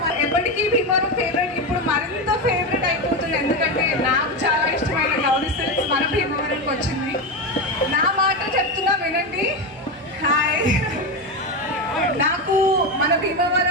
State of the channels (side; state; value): both; normal; correlation 0.15